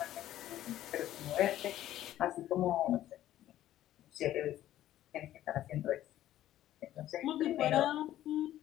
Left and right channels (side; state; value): right; quieter; 13.1 dB